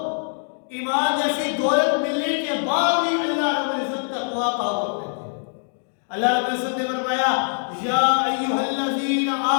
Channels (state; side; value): silent; right; digital silence